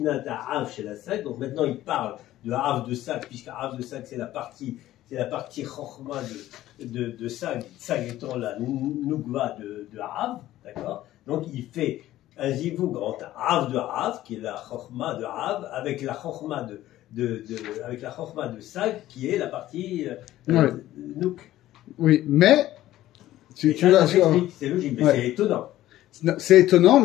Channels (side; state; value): right; quieter; 14.5 dB